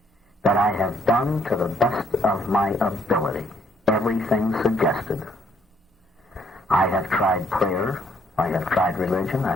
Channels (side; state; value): both; normal; correlation 0.68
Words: that I have done to the best of my ability everything suggested. I have tried prayer, I have tried religion,